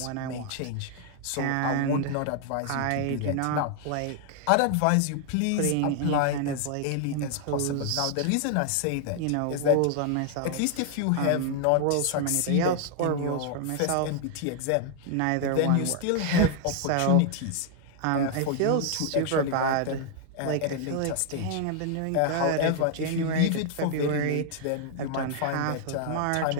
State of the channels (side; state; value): both; different; correlation 0.00